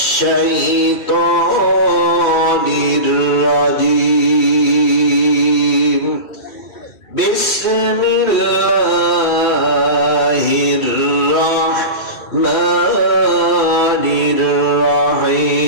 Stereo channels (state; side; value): late; right; 2.3 ms